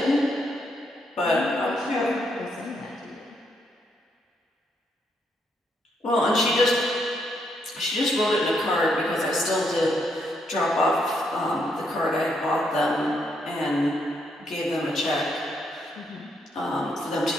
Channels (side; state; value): both; normal; correlation 0.76